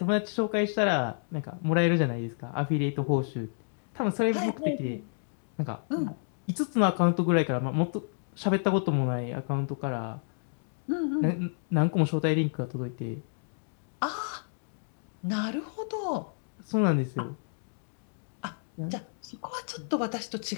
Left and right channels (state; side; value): silent; right; digital silence